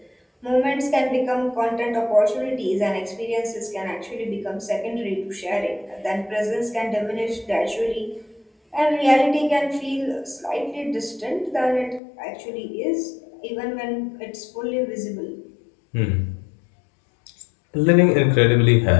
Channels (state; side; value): drops out; right; at 12.0 s